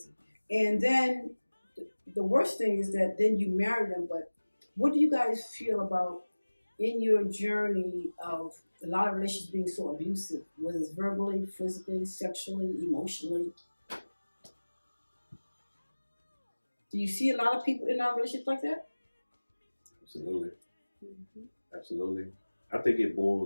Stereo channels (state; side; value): inverted; both; correlation -1.00